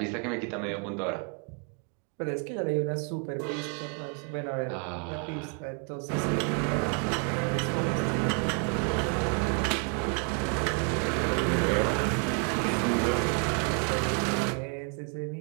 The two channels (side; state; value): left; quieter; 38.9 dB